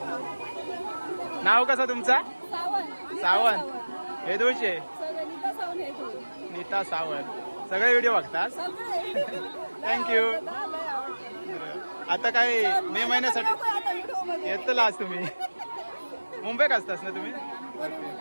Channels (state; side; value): inverted; both; correlation -1.00